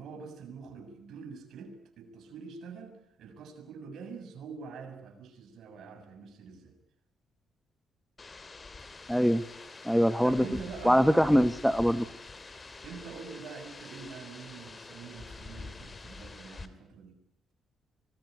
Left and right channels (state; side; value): normal; both; correlation 0.98